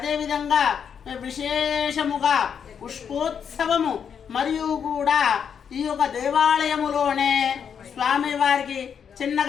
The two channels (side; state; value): right; quieter; 7.5 dB